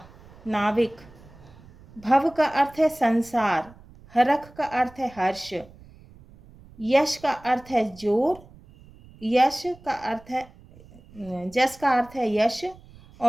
नाविक। भव का अर्थ है संसार। हरख का अर्थ है हर्ष। यश का अर्थ है जोर। यश का अर्थ है जस का अर्थ है यश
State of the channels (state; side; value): noise; right; rumble, 23 dB below the sound